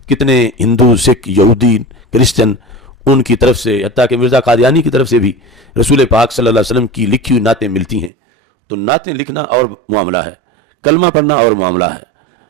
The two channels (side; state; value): left; drops out; at 8.1 s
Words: کتنے ہندو، سکھ، یہودی، کرسچن ان کی طرف سے، حتیٰ کہ مرزا قادیانی کی طرف سے بھی رسول پاک صلی اللہ علیہ وسلم کی لکھی ہوئی نعتیں ملتی ہیں۔ تو نعتیں لکھنا اور معاملہ ہے، کلمہ پڑھنا اور معاملہ ہے۔